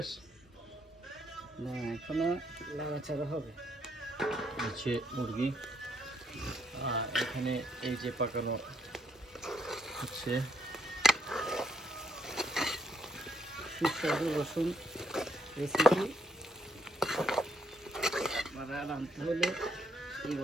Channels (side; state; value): both; normal; correlation 0.72